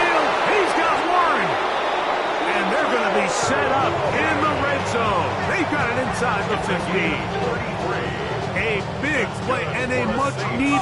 he's got Warren. And they're going to be set up in the red zone. They've got it inside the 15. A big play and a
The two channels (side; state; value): both; identical; correlation 1.00